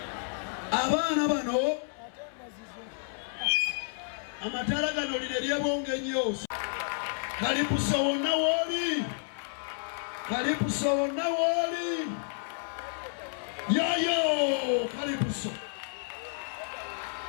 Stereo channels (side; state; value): right; silent; 57 dB below the other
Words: Abaana bano amataala gano lino eryebonga ennyo. Kalipuso wonna wooli, Kalipuso wonna wooli, yoyo Kalipuso.